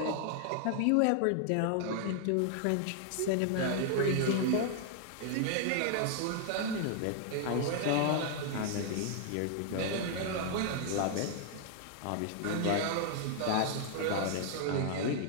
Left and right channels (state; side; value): different; both; correlation 0.00